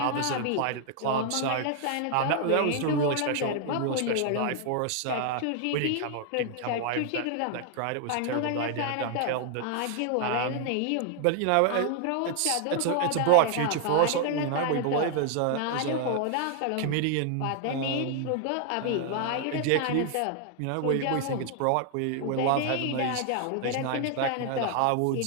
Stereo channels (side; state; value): both; different; correlation 0.00